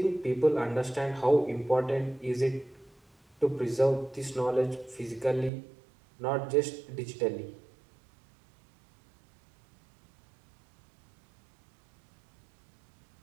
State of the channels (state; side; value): drops out; left; at 5.5 s